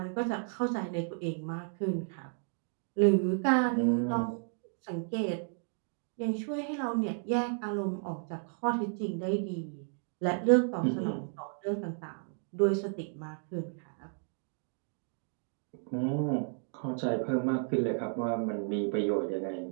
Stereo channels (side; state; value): left; silent; 56 dB below the other